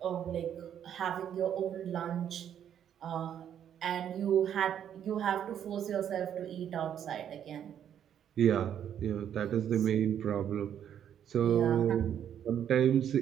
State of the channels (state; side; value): quieter; left; 9.4 dB